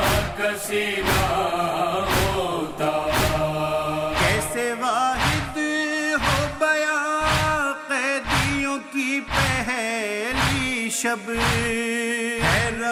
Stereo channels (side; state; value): both; identical; correlation 1.00